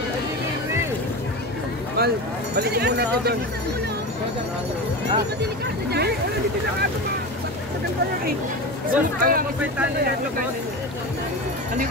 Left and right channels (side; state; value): both; normal; correlation 0.25